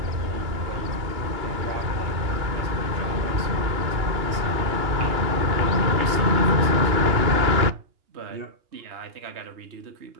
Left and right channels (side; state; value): left; late; 2.9 ms